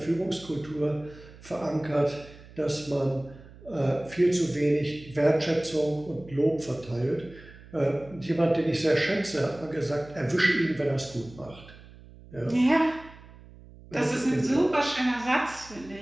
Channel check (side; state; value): right; noise; hum, 20 dB below the sound